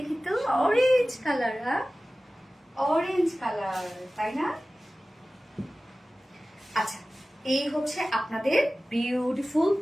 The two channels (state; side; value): normal; both; correlation 0.97